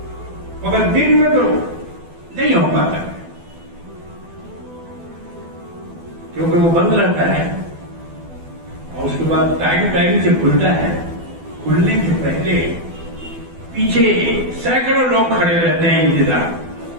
مگر دن میں تو نہیں ہو پاتا کیونکہ وہ بند رہتا ہے اور اس کے بعد ٹائم سے کھلتا ہے. کھلنے سے پہلے پیچھے سینکڑوں لوگ کھڑے رہتے ہیں انتظار،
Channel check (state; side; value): late; left; 12 ms